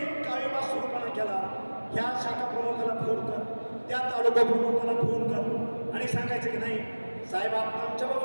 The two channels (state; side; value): inverted; both; correlation -1.00